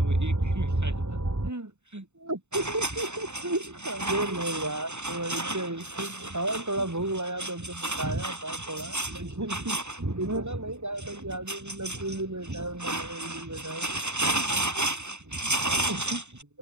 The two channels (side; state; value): left; late; 0.82 ms